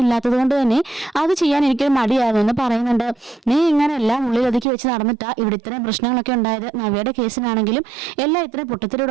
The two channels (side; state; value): left; drops out; at 4.7 s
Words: ഇല്ലാത്തത് കൊണ്ട് തന്നെ അത് ചെയ്യാൻ എനിക്കൊരു മടിയായിരുന്നു എന്ന് പറയുന്നുണ്ട്. നീ ഇങ്ങനെ എല്ലാം ഉള്ളിലൊതുക്കി വെച്ച് നടന്നിട്ടാ ഇവിടെ ഇത്രയും പ്രശ്നങ്ങളൊക്കെ ഉണ്ടായത്. നവ്യയുടെ കേസിനാണെങ്കിലും എല്ലാം ഇത്രയും